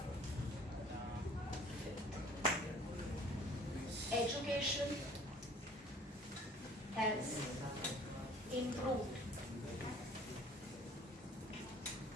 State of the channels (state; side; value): normal; both; correlation 0.52